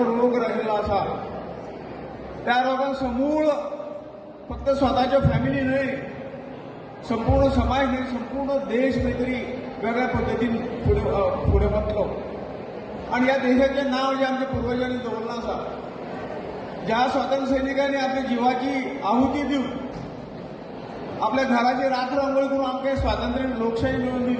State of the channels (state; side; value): identical; both; correlation 1.00